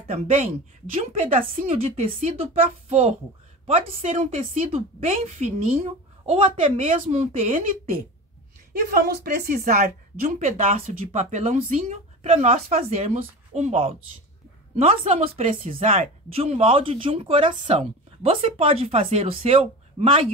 também de um pedacinho de tecido para forro. Pode ser um tecido bem fininho ou até mesmo um TNT. E vamos precisar de um pedaço de papelãozinho para nós fazermos um molde. Nós vamos precisar de um molde de um coração. Você pode fazer o seu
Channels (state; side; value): normal; both; correlation 0.30